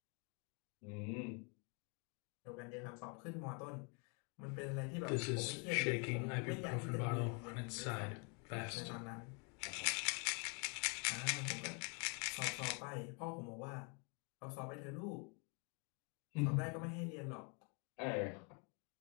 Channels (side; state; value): right; quieter; 35.9 dB